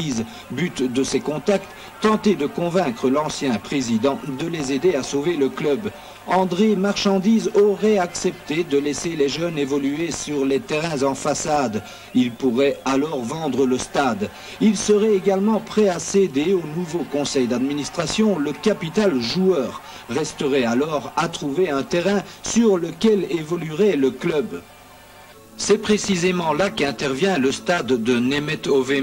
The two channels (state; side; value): identical; both; correlation 1.00